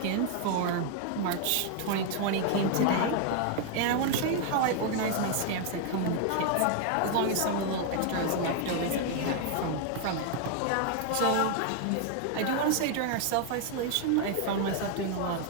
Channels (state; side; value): different; both; correlation 0.00